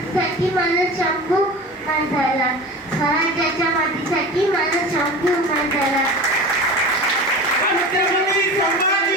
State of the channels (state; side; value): normal; both; correlation 0.33